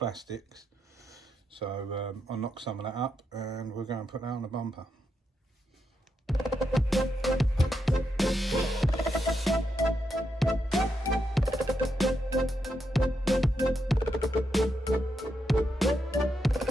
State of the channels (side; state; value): both; normal; correlation 0.83